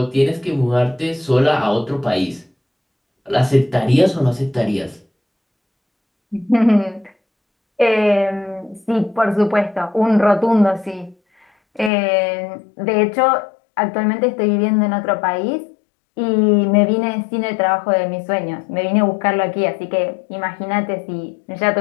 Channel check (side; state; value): right; drops out; at 11.9 s